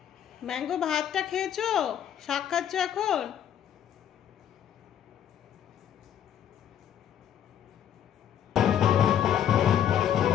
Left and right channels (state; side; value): quieter; right; 9.8 dB